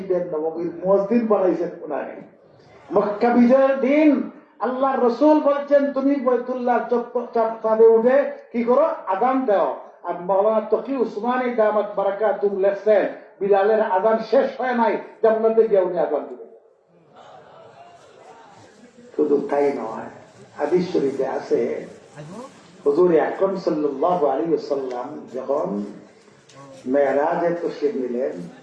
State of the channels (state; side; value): identical; both; correlation 1.00